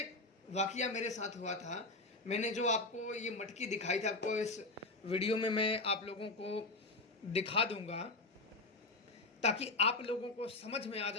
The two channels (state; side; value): quieter; right; 3.1 dB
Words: वाकया मेरे साथ हुआ था। मैंने जो आपको ये मटकी दिखाई थी, आपको इस वीडियो में मैं आप लोगों को दिखा दूंगा ताकि आप लोगों को समझ में आ